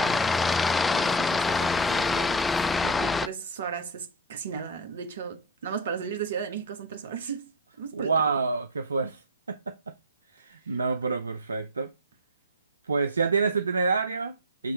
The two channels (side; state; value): both; normal; correlation 0.08